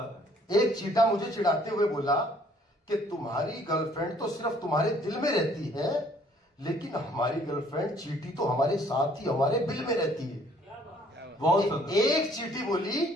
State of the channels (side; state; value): both; normal; correlation 0.60